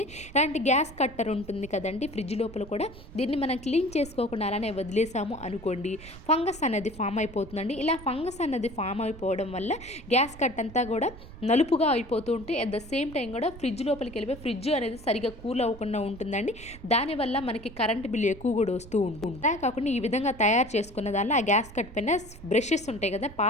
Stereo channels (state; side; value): noise; right; rumble, 16 dB below the sound